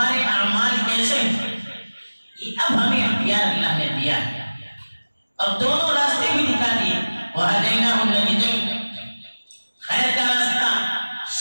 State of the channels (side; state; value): both; inverted; correlation -1.00